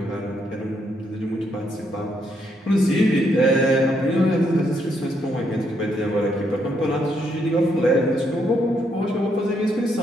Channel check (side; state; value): both; normal; correlation 0.75